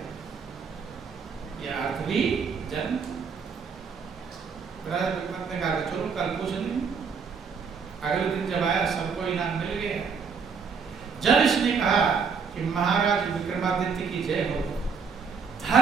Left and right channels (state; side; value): quieter; left; 5.8 dB